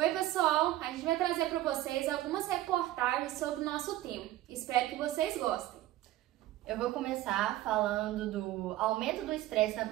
pessoal, a gente vai trazer para vocês algumas reportagens sobre o nosso tema. Espero que vocês gostem. Eu vou começar falando do aumento do estresse na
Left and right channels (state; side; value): quieter; left; 15.2 dB